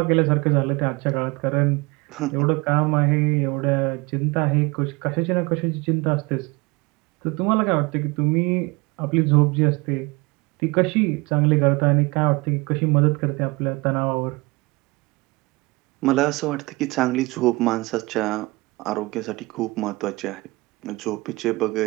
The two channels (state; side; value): quieter; left; 24.1 dB